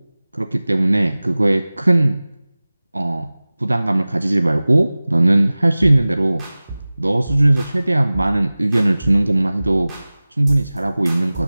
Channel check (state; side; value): inverted; both; correlation -0.98